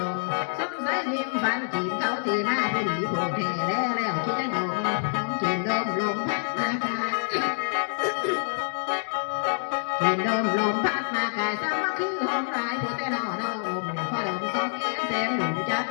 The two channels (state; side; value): silent; right; 60 dB below the other